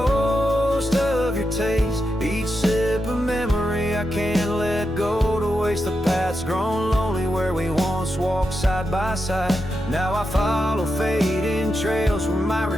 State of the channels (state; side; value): normal; both; correlation 0.87